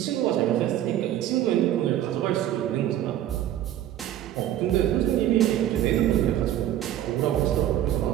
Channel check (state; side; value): quieter; left; 12.2 dB